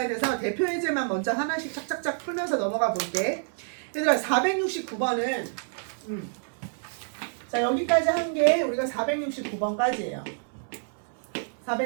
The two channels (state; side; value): silent; left; 60 dB below the other